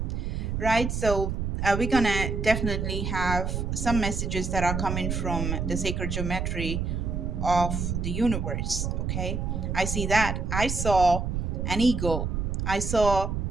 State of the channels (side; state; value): right; noise; rumble, 1 dB below the sound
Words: right? So we're gonna definitely have some messages that are coming from the sacred geometry of the universe. Okay, I see that. I saw an eagle. I saw